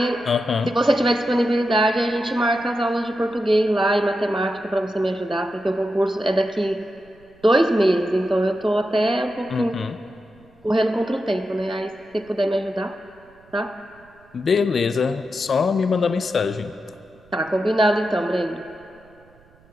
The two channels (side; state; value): right; noise; rumble, 30 dB below the sound